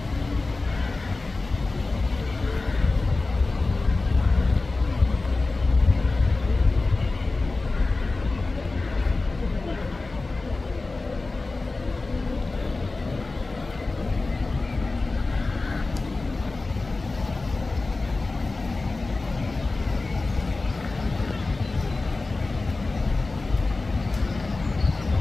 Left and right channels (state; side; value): quieter; right; 3.4 dB